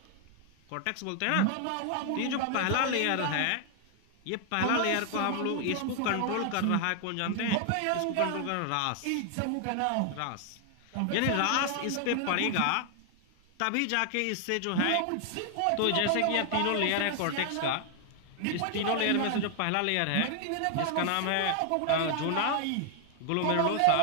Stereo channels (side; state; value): both; different; correlation 0.00